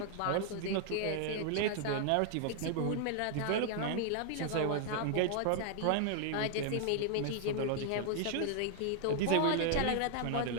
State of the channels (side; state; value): both; different; correlation 0.00